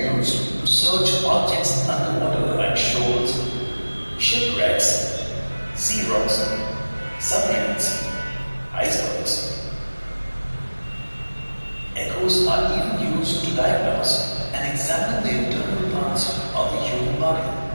to search objects underwater like shoals, shipwrecks, sea rocks, submarines, icebergs. Echoes are even used to diagnose and examine the internal parts of the human body.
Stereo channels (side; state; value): both; inverted; correlation -1.00